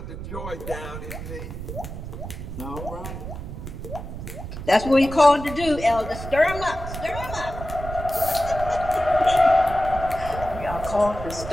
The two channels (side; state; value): right; noise; rumble, 9 dB below the sound